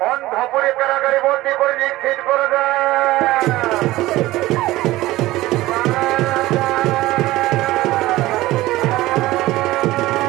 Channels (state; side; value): quieter; left; 17.5 dB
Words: অন্ধপুরে কারাগারে বন্দী করে নিক্ষেপ করে দেয়।